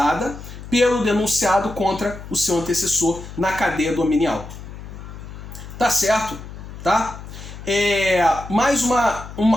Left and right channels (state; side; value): noise; left; hum, 13 dB below the sound